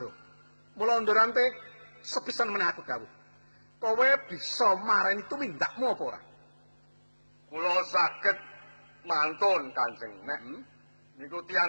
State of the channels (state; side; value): inverted; both; correlation -1.00